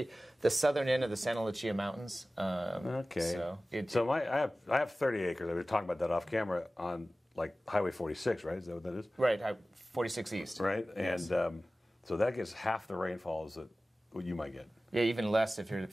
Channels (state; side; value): normal; both; correlation 0.96